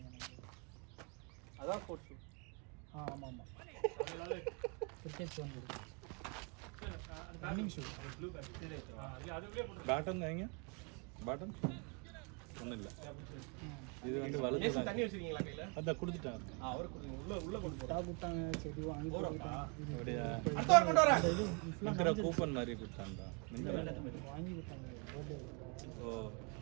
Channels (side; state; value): left; quieter; 34.6 dB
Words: அதான் ஸ்போர்ட்ஸ் ஷூ. ஆமா ஆமா. அதனால கிரிக்கெட் ஷூ இருக்கு. ரன்னிங் ஷூ ப்ளூ பேட் இல்ல அதுக்குள்ளே போட்டு பேட்டன் வைங்க பேட்டன் ஒன்றும் இல்லை இது வந்து வலது ஏசி தண்ணி வச்சிருக்கீங்களா கையில? அதான் கொடுத்துட்டாங்க அவர் உள்ள கொண்டு போறோம். டா குட்டாங்க செடி வாங்கி போறாங்க. அப்படியா அடுத்த வாரம் கொண்டு வரேன். இருக்கிற கூப்பன் மாதிரி கொடுத்தாங்க வாங்கி கொடுத்தாங்க. பர்த்டே ஓ